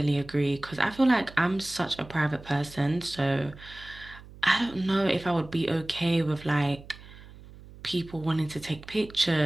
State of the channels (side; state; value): right; noise; hum, 19 dB below the sound